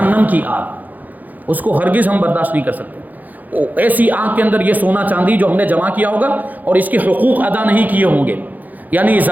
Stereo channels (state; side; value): late; left; 0.082 ms